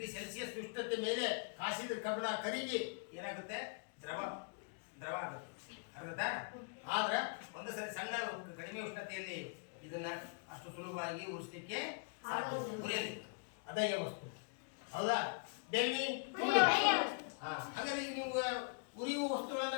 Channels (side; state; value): right; quieter; 39.8 dB